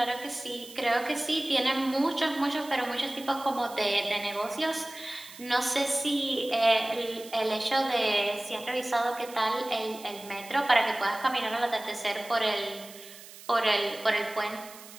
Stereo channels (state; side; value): noise; right; hiss, 17 dB below the sound